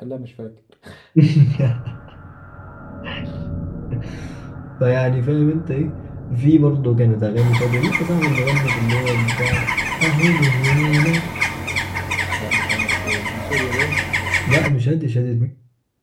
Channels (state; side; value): identical; both; correlation 1.00